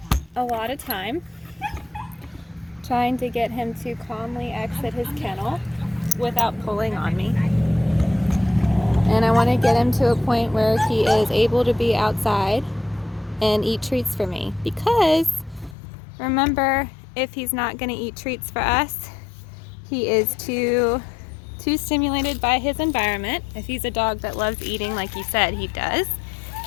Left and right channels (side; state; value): right; drops out; at 15.8 s